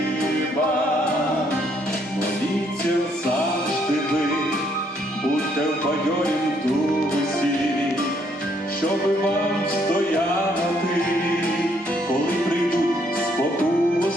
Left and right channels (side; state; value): both; normal; correlation 0.69